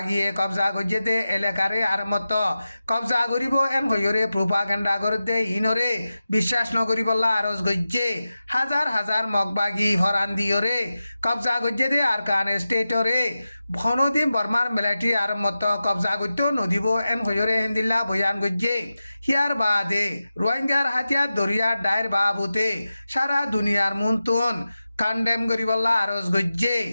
কবজা গজ্জেতে এলাকারে আর মত কবজা করিব এন হইরে প্রোপাগান্ডা করতে ইনরে বিশ্বাস নগরিবল্লা আরজ গজ্জে হাজার হাজার মগবাগি হরান দিয়রে কবজা গজ্জেতে আরকান স্টেটরে ভনদিন বর্মার মেলাটি আর মত কবজা করতে নদিব এন হইরে হেন্দিল্লা বয়ান গজ্জে হিয়ার বাদে রোহিঙ্গার হাতিয়ার দরিয়ার ডায়ের বাবুতে সারা দুনিয়ার মুনতুন কান্ডেম গরিবল্লা আরজ গজ্জে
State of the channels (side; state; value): both; inverted; correlation -0.93